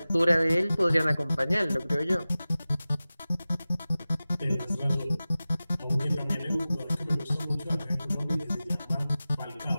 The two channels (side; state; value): both; inverted; correlation -0.96